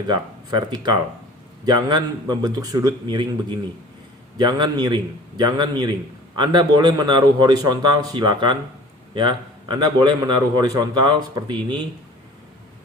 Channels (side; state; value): both; normal; correlation 0.45